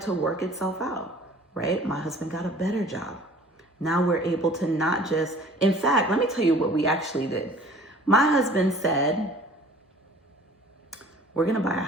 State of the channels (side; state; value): both; normal; correlation 0.49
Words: to work itself out, right? My husband got a better job. Now we're able to not just, in fact, let me tell you what we actually did. My husband said, we're gonna buy a